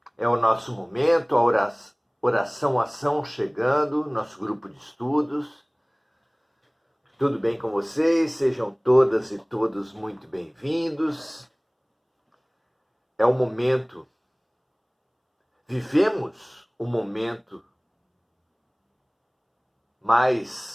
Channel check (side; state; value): both; identical; correlation 1.00